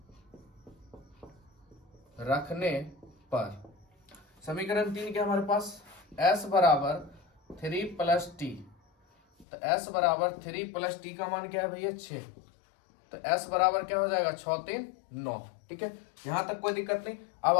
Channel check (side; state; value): right; drops out; at 9.5 s